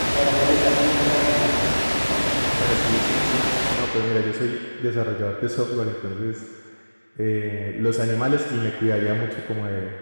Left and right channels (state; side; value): inverted; both; correlation -1.00